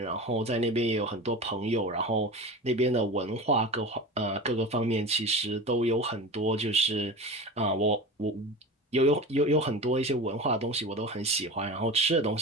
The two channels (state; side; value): normal; both; correlation 0.30